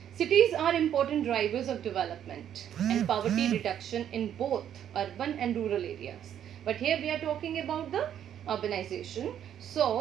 Cities are important drivers of development and poverty reduction in both urban and rural areas. But here we are talking about the urbanization.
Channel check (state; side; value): quieter; left; 9.9 dB